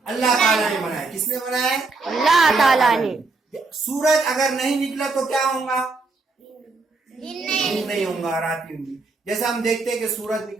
अल्लाह ताला ने बनाया। किसने बनाया? अल्लाह ताला ने। सूरज अगर नहीं निकला तो क्या होगा? दिन नहीं होगा, रात होगी। जैसा हम देखते हैं कि सूरज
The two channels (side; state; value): left; quieter; 3.8 dB